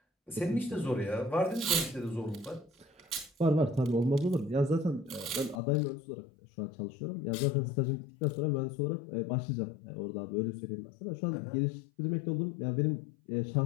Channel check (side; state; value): right; drops out; at 5.6 s